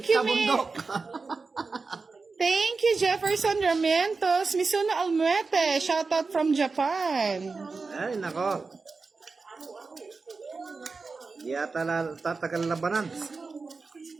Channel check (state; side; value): quieter; left; 4.3 dB